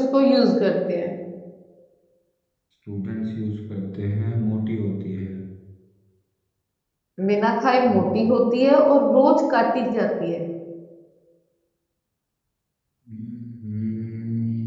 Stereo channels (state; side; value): identical; both; correlation 1.00